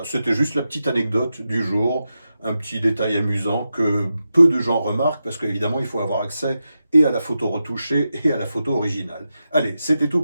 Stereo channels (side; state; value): both; inverted; correlation -0.89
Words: c'était juste la petite anecdote du jour, un petit détail amusant que peu de gens remarquent, parce qu'évidemment, il faut avoir accès et à la photo retouchée et à la photo originale. Allez, c'était tout